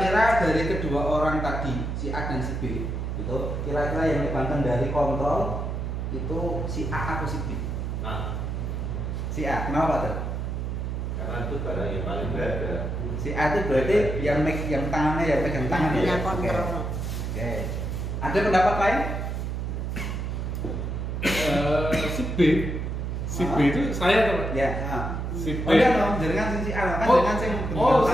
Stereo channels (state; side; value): noise; right; hum, 3 dB below the sound